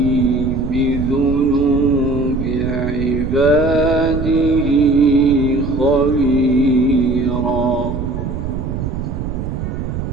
بذنوب عباده خبيرا.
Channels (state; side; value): noise; right; rumble, 5 dB below the sound